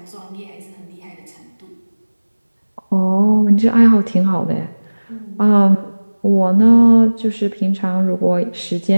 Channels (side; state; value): both; inverted; correlation -1.00